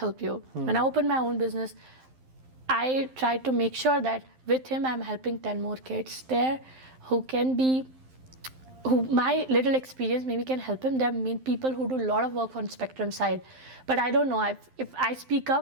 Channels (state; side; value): late; left; 12 ms